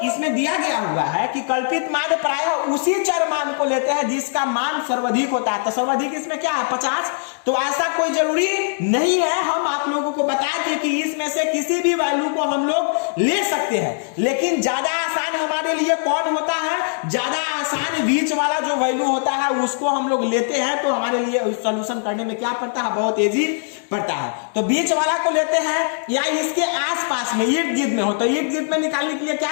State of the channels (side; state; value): right; silent; digital silence